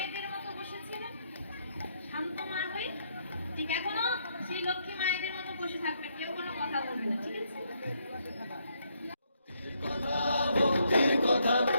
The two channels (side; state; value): both; inverted; correlation -0.74